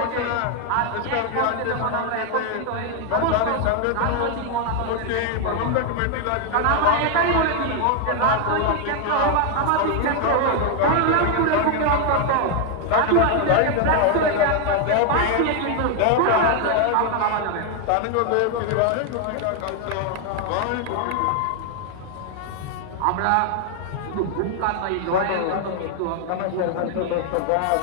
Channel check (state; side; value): different; both; correlation 0.00